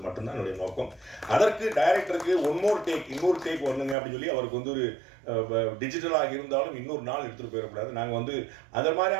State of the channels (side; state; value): left; drops out; at 4.0 s